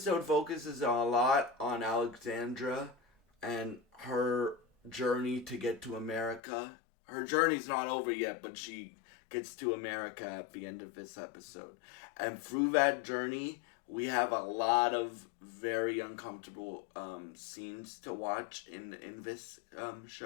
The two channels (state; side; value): drops out; right; at 6.4 s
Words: focuses a lot on Alexandra and her journey to get to America. Her journey's not over yet, but she gets to America at the end of this episode. And through that journey, we have a lot of very uncomfortable scenes to watch in this